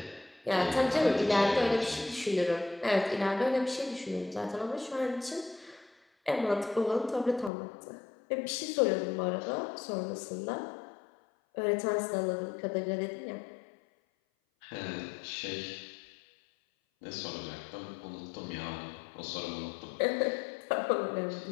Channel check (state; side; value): drops out; right; at 7.5 s